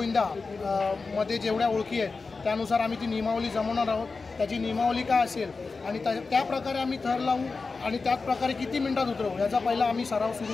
मध्ये जेवढ्या ओळखी आहेत त्यानुसार आम्ही ती नियमावली जमवणार आहोत। त्याची नियमावली काय असेल आणि त्या प्रकारे आम्ही थर लावू आणि त्याच प्रकारे किती मिनिटात उतरवू याचा पहिला आम्ही सराव सुरू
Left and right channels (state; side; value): quieter; right; 4.2 dB